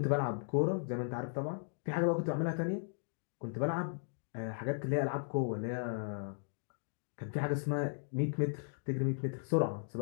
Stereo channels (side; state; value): right; silent; digital silence